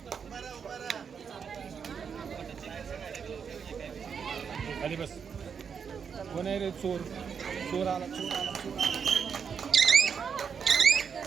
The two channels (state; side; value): quieter; left; 6.7 dB